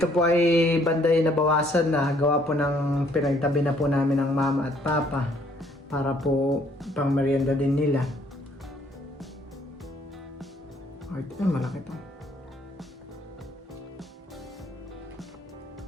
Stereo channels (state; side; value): normal; both; correlation 0.64